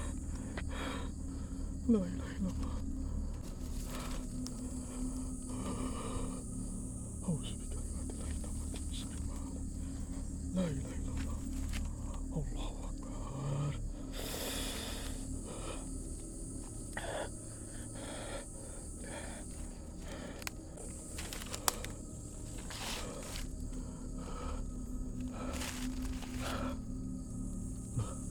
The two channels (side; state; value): both; identical; correlation 1.00